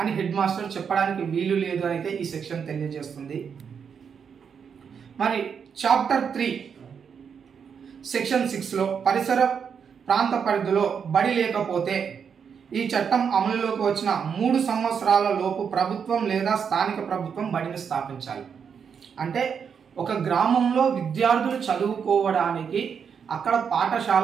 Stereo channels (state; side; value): quieter; left; 6.9 dB